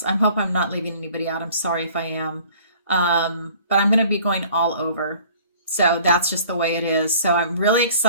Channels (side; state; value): both; inverted; correlation -0.51